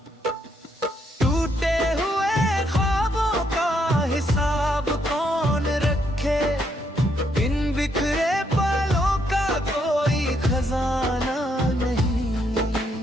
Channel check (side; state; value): both; normal; correlation 0.74